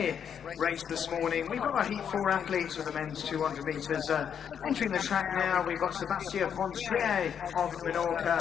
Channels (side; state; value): right; quieter; 8.0 dB